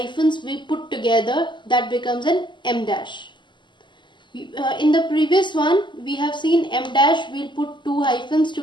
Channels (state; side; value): late; right; 0.22 ms